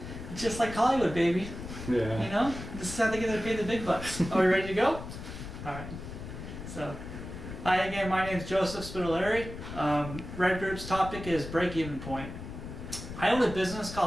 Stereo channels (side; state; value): left; noise; rumble, 10 dB below the sound